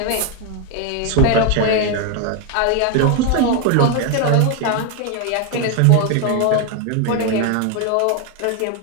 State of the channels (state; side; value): different; both; correlation 0.01